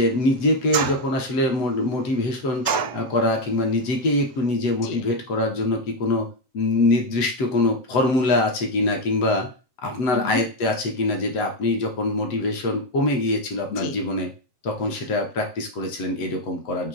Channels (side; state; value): right; late; 7.9 ms